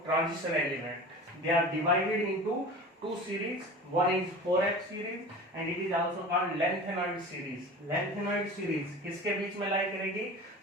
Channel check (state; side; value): normal; both; correlation 0.36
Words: transition element. They are divided into two series. One is 4f series and it is also called lengthenoid series. Lengthenoid series किसके बीच में लाई करेगी?